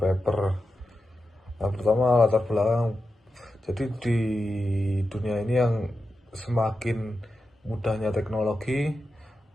Nah, pertama latar belakang. Jadi di dunia ini yang semakin mudahnya teknologi,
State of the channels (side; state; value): both; normal; correlation 0.90